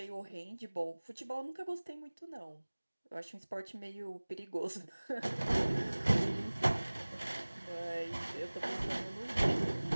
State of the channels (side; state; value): both; inverted; correlation -1.00